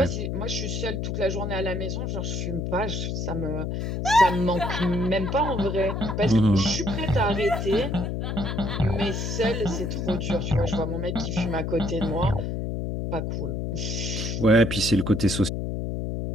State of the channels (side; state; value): left; noise; hum, 2 dB below the sound